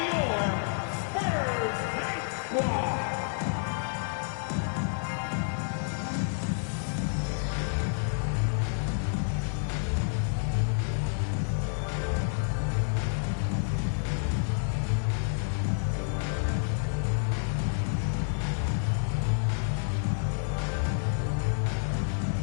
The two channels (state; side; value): silent; right; 58 dB below the other